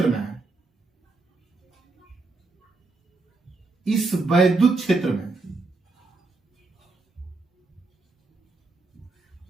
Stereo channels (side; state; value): left; quieter; 3.6 dB